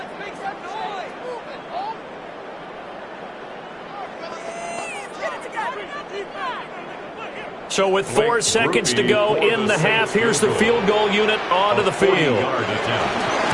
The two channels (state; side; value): identical; both; correlation 1.00